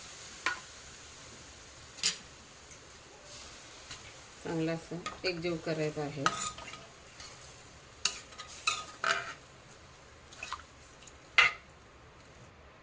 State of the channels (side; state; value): both; identical; correlation 1.00